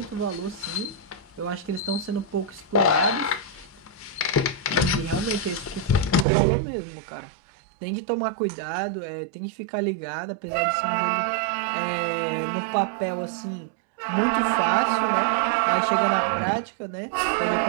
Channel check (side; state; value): left; drops out; at 6.2 s